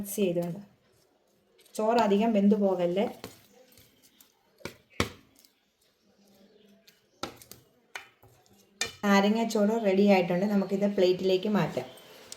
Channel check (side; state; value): both; identical; correlation 1.00